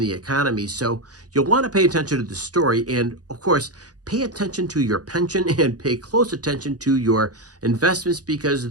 economy. So you'll want to pay attention to the story, and of course, pay attention to your pension and pay close attention to your investments,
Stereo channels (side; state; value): left; late; 0.68 ms